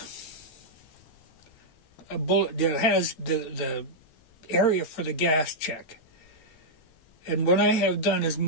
a bullet that has the area for the gas check. And what I have done is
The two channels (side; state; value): right; late; 13 ms